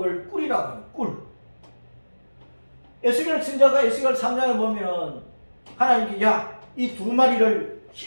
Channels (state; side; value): inverted; both; correlation -1.00